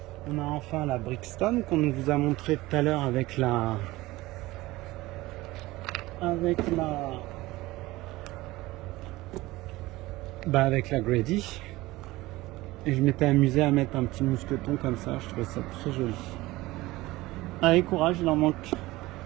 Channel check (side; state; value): left; quieter; 19.1 dB